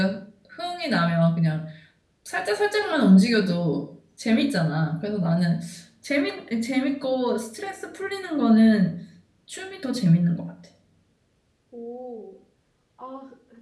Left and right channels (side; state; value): both; identical; correlation 1.00